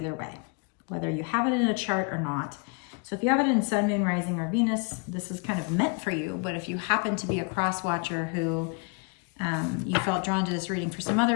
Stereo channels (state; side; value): quieter; right; 33.6 dB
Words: way, whether you have it in a chart or not. So if you have it in Sun, Moon, Rising, or Venus, this is kind of meant for you. But if you happen to be a cross watcher who you felt drawn to this reading for some